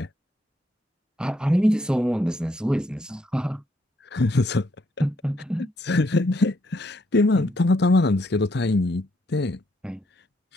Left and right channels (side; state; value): both; normal; correlation 0.73